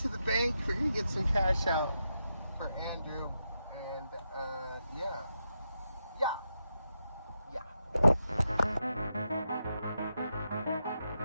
the bank, we're gonna get some cash out for Andrew, and yeah.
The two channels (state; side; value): inverted; both; correlation -0.85